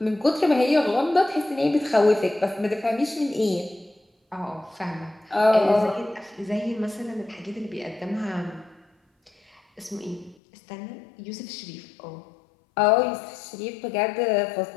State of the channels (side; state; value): right; drops out; at 10.4 s